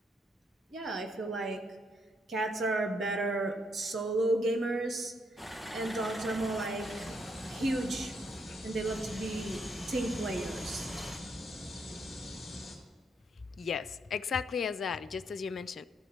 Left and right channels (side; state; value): both; normal; correlation 0.74